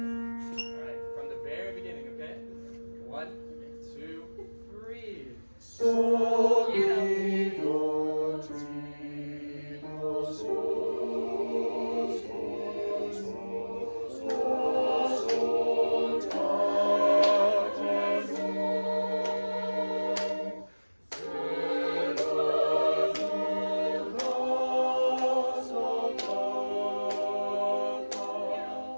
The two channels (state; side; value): inverted; both; correlation -1.00